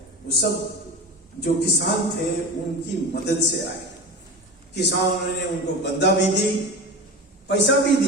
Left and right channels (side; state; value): both; normal; correlation 0.28